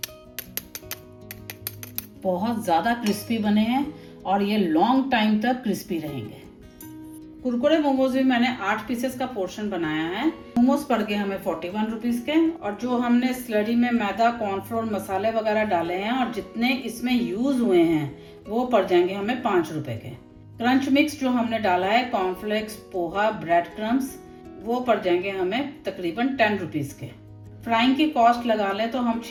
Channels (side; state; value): both; identical; correlation 1.00